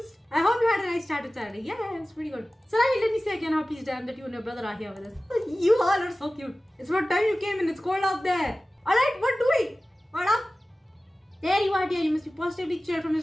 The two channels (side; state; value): both; normal; correlation 0.96